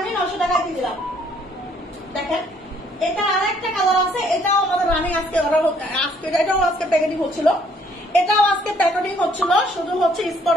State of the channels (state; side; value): normal; both; correlation 0.64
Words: আমি 900 টাকায় দিয়ে দিলাম। দেখেন এটা আর একটা কালার আছে, এটাও আমাদের রানিং, এটাও আজকে প্যাকেটিং হচ্ছিল, শুধু হচ্ছে